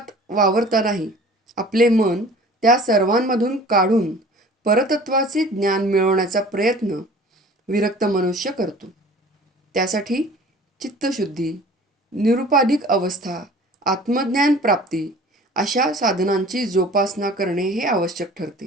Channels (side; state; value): both; normal; correlation 0.46